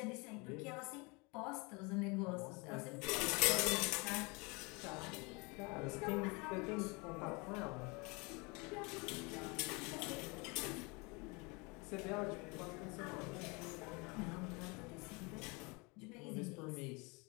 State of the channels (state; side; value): quieter; right; 28.3 dB